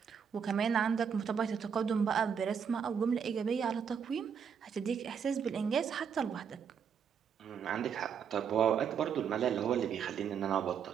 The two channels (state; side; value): quieter; left; 7.2 dB